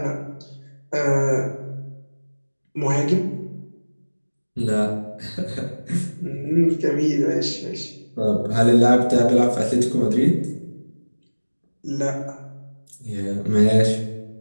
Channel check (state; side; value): inverted; both; correlation -1.00